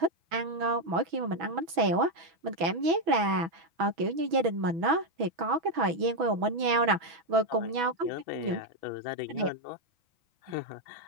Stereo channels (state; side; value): late; left; 6.2 ms